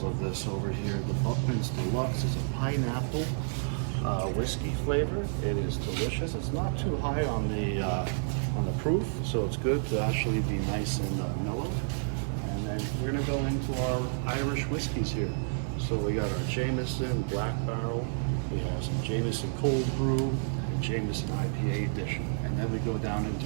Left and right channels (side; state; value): left; silent; digital silence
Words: of this over here. The Buckman's Deluxe is a pineapple whiskey flavor. It is delicious. It's not too high on the proof, so it's good to actually be nice and mellow. And then we're going to go into our Irish whiskeys here. So we got our Jameson Black Barrel, we have some Jameson Cold Brew, and Jameson IPA edition. And then we go down